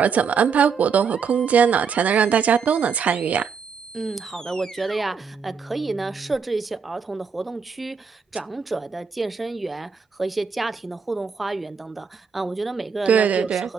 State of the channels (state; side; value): quieter; left; 5.9 dB